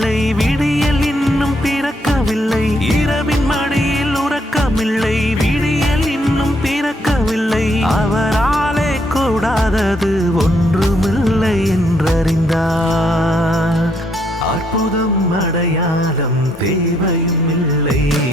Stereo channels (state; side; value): normal; both; correlation 0.73